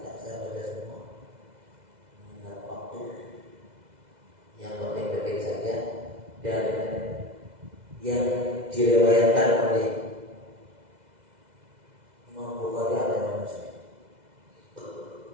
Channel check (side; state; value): left; late; 2.0 ms